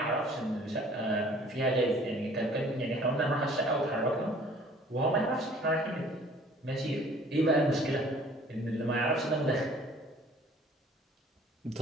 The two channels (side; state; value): both; normal; correlation 0.53